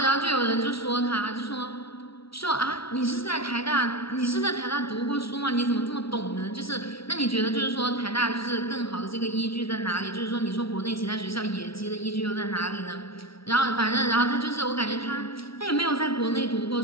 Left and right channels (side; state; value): right; late; 0.75 ms